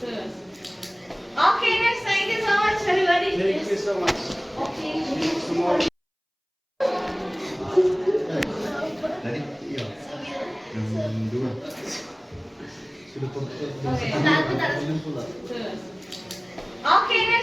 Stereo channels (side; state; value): both; identical; correlation 1.00